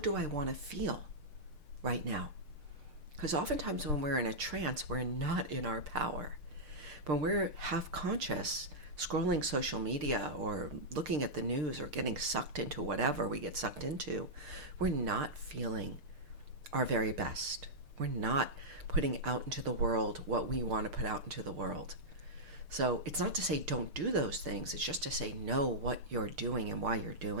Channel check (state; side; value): late; left; 6.7 ms